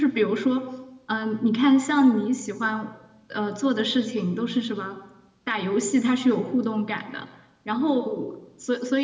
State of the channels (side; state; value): both; identical; correlation 1.00